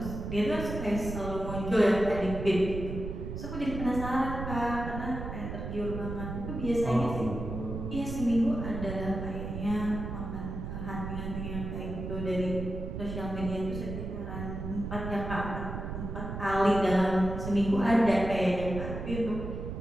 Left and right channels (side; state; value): right; noise; rumble, 6 dB below the sound